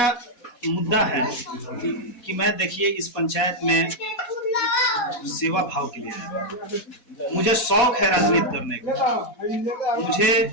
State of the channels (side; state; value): right; late; 4.1 ms